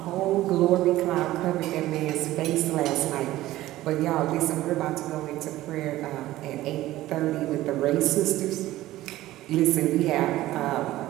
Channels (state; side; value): quieter; left; 15.9 dB